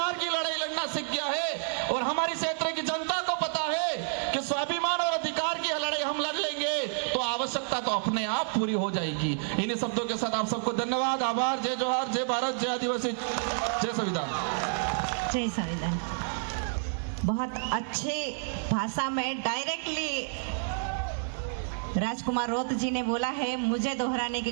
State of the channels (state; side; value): silent; left; 58 dB below the other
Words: की लड़ाई लड़ना सीख गया है। और हमारी क्षेत्र की जनता को पता है कि स्वाभिमान और अधिकार की लड़ाई हम लड़ लेंगे तो आवश्यकता तो अपने आप पूरी हो जाएगी। इन्हीं शब्दों के साथ आप सबको धन्यवाद, आभार, जय जोहार, जय भारत, जय आदिवासी, जय संविधान। जय संविधान। बहुत अच्छी भाषा में डायरेक्टली राजकुमार रोत जी ने बोला है, मुझे दोहराने की